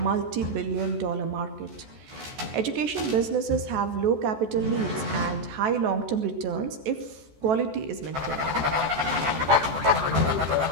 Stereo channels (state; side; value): late; left; 14 ms